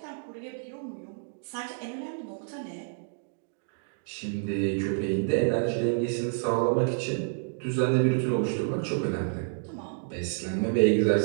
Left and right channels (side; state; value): left; silent; digital silence